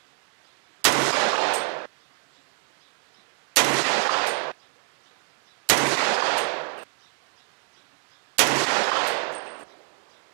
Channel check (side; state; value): left; quieter; 38.6 dB